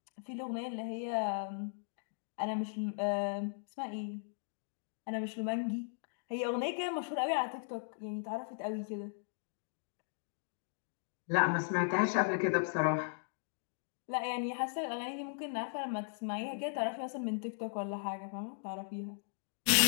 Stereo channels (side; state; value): right; silent; digital silence